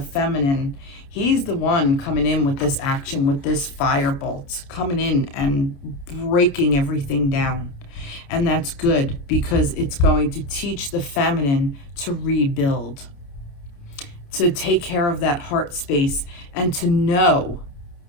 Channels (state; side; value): late; right; 29 ms